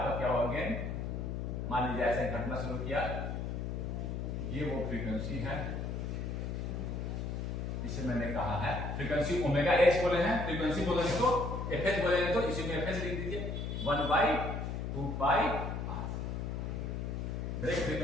क्या हुआ गेन? मान लीजिए ऐसे घटना शुरू किया, ये वो फ्रीक्वेंसी है इसे मैंने कहा है फ्रीक्वेंसी ओमेगा एच बोले हैं, फ्रीक्वेंसी बोलेंगे तो एफएच बोलेंगे तो इसी में एफएच लिख दीजिए 1/2π r। ब्रेक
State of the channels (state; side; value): noise; left; hum, 3 dB below the sound